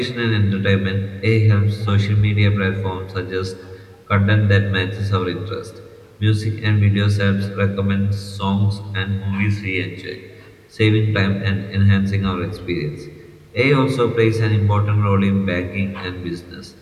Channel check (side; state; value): both; identical; correlation 1.00